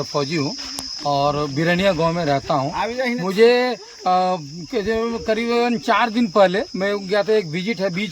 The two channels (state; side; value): identical; both; correlation 1.00